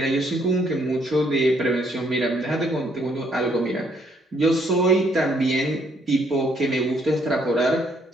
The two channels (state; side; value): normal; both; correlation 0.69